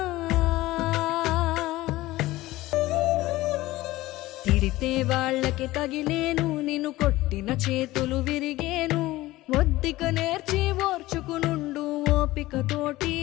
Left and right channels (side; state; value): right; quieter; 17.8 dB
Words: తిడితే వాళ్ళకి తగిలేను నిన్ను కొట్టిన చేతులు విరిగేను ఒద్దిక నేర్చి ఓర్చుకునుండు ఓపిక తోటి